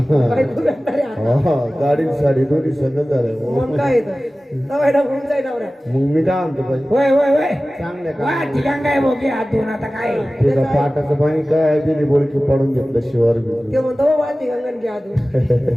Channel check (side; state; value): both; normal; correlation 0.97